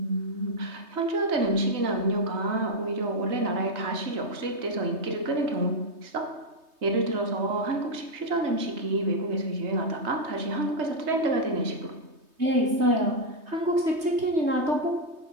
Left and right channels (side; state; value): left; late; 3.2 ms